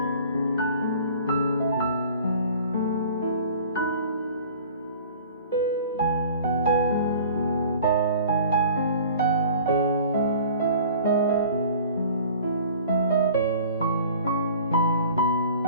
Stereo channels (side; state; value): both; inverted; correlation -0.46